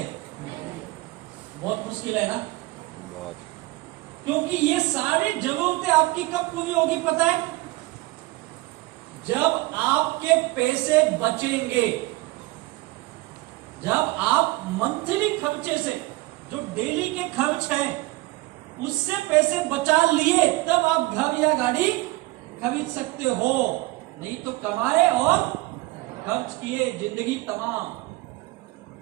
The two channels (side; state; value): left; quieter; 20.5 dB